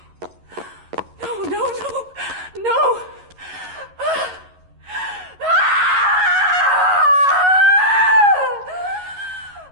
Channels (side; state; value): left; late; 11 ms